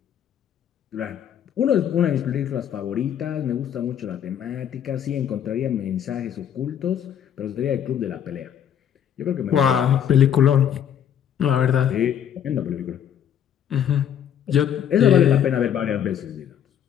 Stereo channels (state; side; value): quieter; right; 9.3 dB